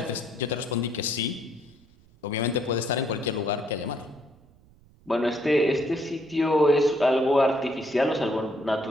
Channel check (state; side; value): noise; right; rumble, 28 dB below the sound